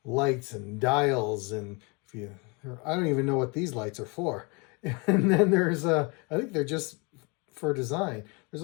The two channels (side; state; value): right; quieter; 30.2 dB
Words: lights and dials, and I don't even know what these lights are for. And then there's I think they're just for design. There's